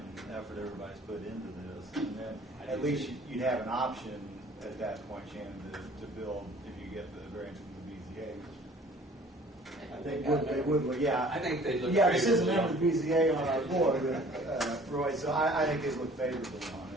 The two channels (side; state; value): both; normal; correlation 0.52